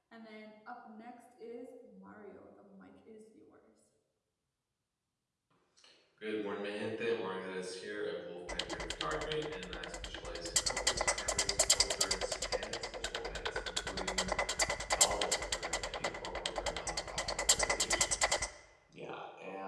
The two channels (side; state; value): both; identical; correlation 1.00